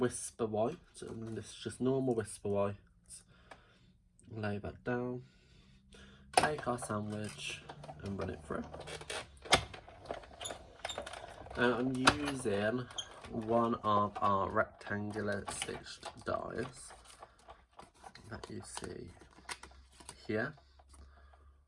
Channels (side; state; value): both; identical; correlation 1.00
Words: White, and this is just normal Whisper White. Lay that down, take our sandwich and run it through. And I'm using one of our rectangular stitched dies that you see here,